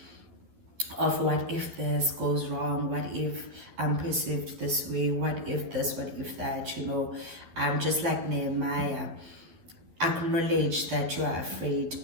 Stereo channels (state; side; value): late; left; 12 ms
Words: of what if this goes wrong, what if I'm perceived this way, what if this, what if that, I'm just like Nehemiah. Acknowledge that you are afraid,